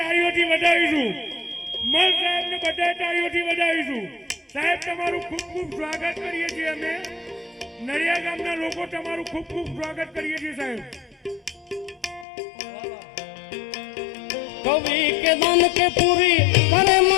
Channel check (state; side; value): drops out; right; at 12.2 s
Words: વધાવીશું. મલ સાહેબને બધાએ તાળીઓથી વધાવીશું. સાહેબ, તમારું ખૂબ ખૂબ સ્વાગત કરીએ છીએ અમે. નડિયા ગામના લોકો તમારું ખૂબ ખૂબ સ્વાગત કરીએ છીએ સાહેબ. કવિ કે ધન કે પૂરી કરે